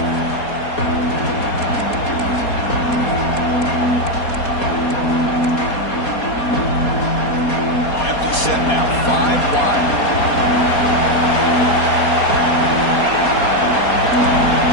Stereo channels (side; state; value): right; late; 4.2 ms